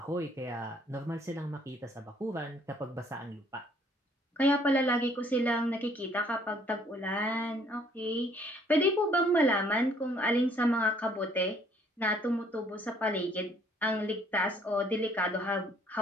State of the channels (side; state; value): both; normal; correlation 0.62